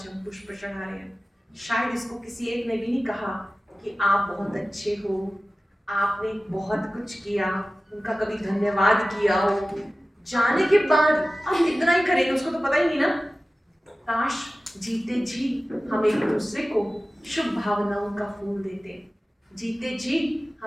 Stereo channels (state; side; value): normal; both; correlation 0.96